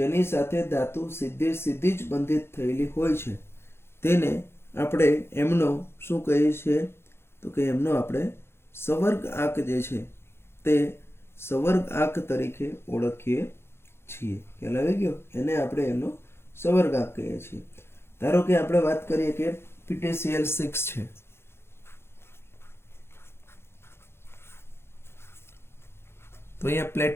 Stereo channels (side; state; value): right; late; 0.12 ms